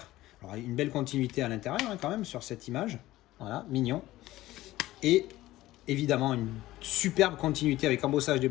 Alors une belle continuité à l'intérieur hein, quand même sur cette image. Voilà, mignon. Et évidemment une superbe continuité avec embossage,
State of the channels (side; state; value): right; quieter; 16.4 dB